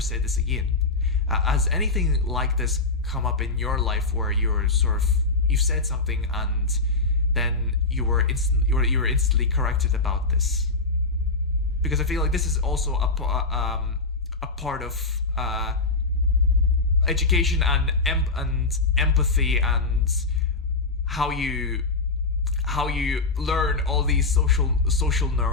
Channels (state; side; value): quieter; right; 3.5 dB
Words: said this again. Has anything like this come up in your life where you've said something and then you were instantly corrected about this? Because I feel like this is also a part of education and empathy, and how you learn all these social